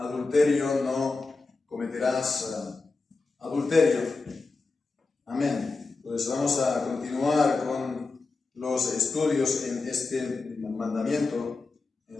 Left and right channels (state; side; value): quieter; right; 3.9 dB